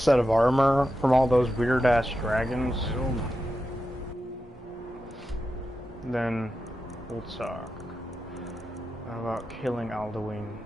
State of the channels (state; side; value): normal; both; correlation 0.89